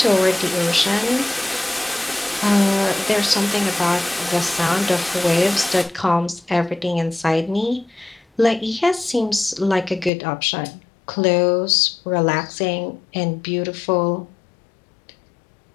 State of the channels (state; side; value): drops out; right; at 10.1 s